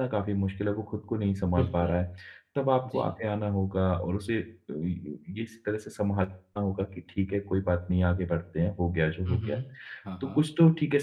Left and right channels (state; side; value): identical; both; correlation 1.00